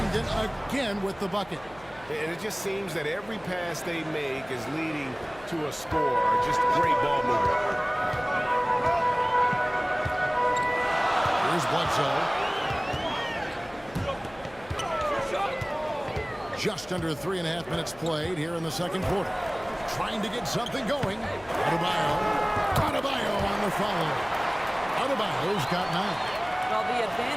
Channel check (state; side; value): noise; left; hum, 23 dB below the sound